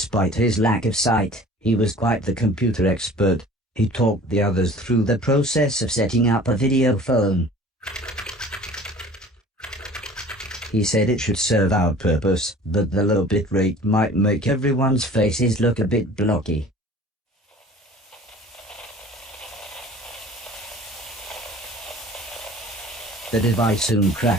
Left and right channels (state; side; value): normal; both; correlation 0.46